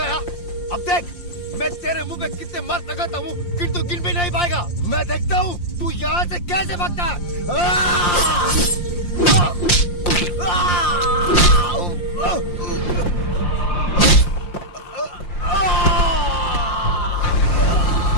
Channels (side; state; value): right; late; 5.7 ms